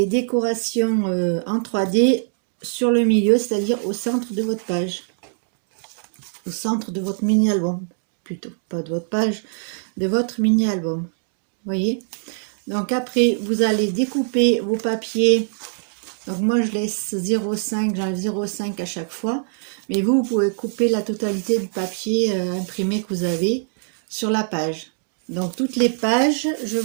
décorations en 3D sur le milieu, c'est-à-dire au centre de votre page, au centre de votre mini-album, plutôt, pas de votre page, de votre mini-album. Voyez. Donc après, vous allez découper vos papiers. Donc moi je laisse 0,5, j'enlève 0,5 à chaque fois. Mais vous pouvez couper la totalité du papier imprimé que vous avez sur la page. Donc toutes les pages, je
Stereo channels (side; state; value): left; silent; digital silence